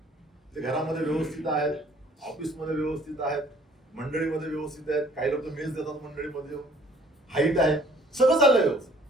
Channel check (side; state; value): both; normal; correlation 0.57